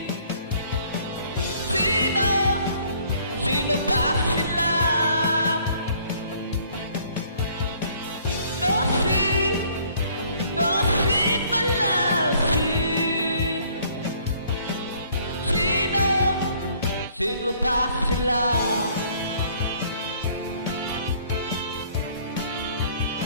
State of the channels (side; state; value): both; inverted; correlation -0.59